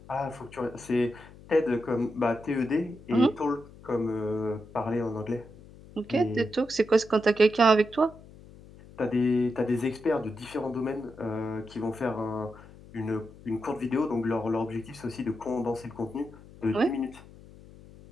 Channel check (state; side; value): noise; left; hum, 20 dB below the sound